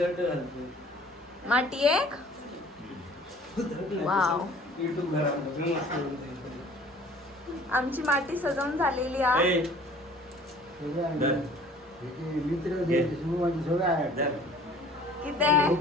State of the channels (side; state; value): both; normal; correlation 0.51